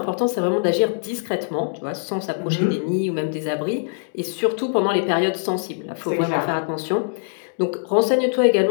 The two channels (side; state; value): right; silent; digital silence